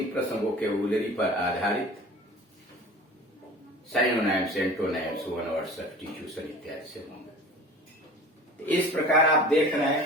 प्रश्न वोकैबुलरी पर आधारित साइनोनाइम्स, एंटोनाइम्स, वन वर्ड सब्स्टिट्यूशन इत्यादि से होंगे। इस प्रकार आप देख रहे हैं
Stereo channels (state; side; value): normal; both; correlation 0.40